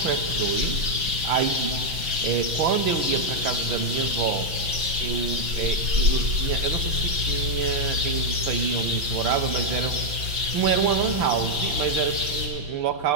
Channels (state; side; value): late; left; 6.0 ms